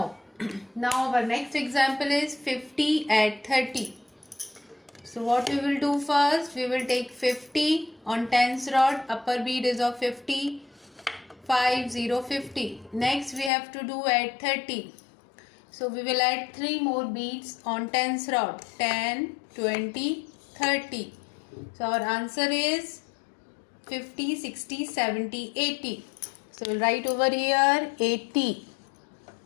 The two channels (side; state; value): right; drops out; at 13.5 s